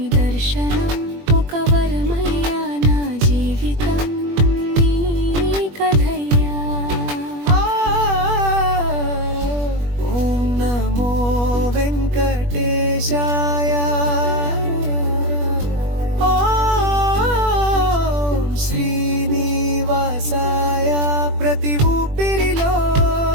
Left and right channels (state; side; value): late; left; 21 ms